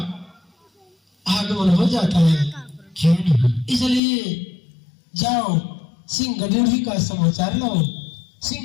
आगमन हो जाता है। क्यों नहीं? इसलिए जाओ सिंह ड्योढ़ी का समाचार लाओ।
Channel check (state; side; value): drops out; right; at 4.0 s